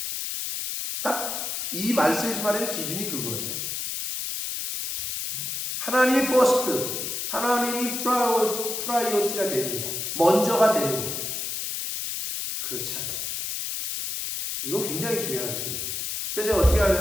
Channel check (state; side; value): noise; left; hiss, 3 dB below the sound